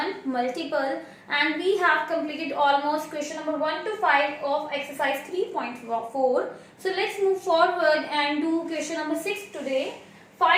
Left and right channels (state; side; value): identical; both; correlation 1.00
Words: multiple, and we have completed almost question number 1 to 5 of exercise 3.4. So let's move forward and do question number 6 today.